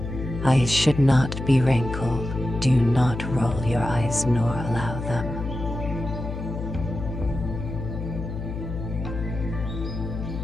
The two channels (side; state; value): left; noise; hum, 7 dB below the sound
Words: eyes should not be wrinkled. Do not roll your eyes nor allow them